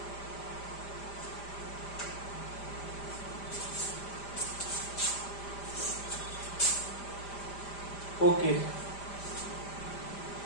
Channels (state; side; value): late; right; 5.0 ms